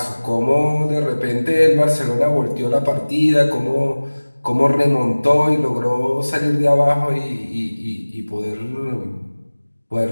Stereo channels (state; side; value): inverted; both; correlation -1.00